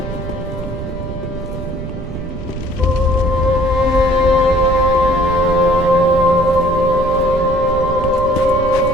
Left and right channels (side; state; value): right; noise; rumble, 9 dB below the sound